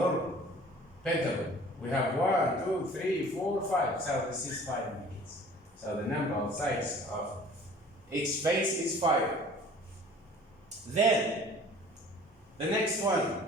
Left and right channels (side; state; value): both; normal; correlation 0.48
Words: pentagon? We have 1, 2, 3, 4, 5. So this is 5 units. So the number of sides of each face is 5. Then the next one.